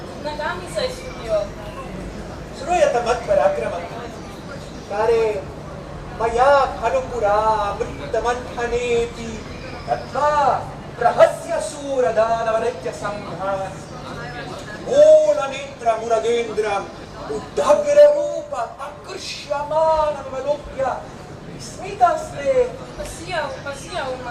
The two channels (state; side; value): identical; both; correlation 1.00